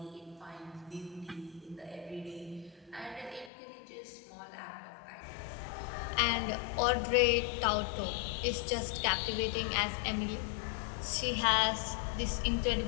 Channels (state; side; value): drops out; right; at 3.5 s